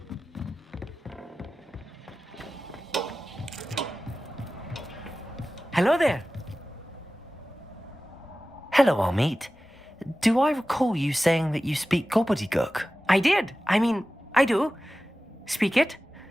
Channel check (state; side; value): normal; both; correlation 0.96